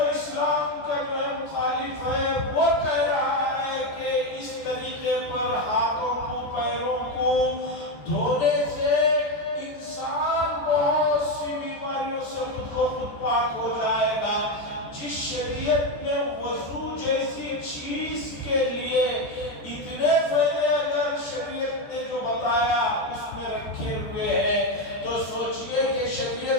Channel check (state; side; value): late; right; 14 ms